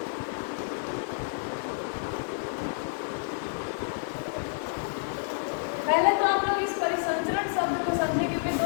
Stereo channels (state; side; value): silent; right; digital silence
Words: पहले तो आप लोग इस परिसंचरण शब्द को समझे, क्योंकि